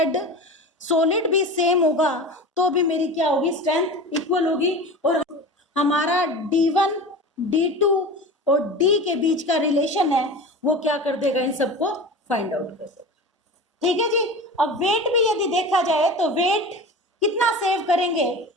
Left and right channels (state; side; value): normal; both; correlation 0.32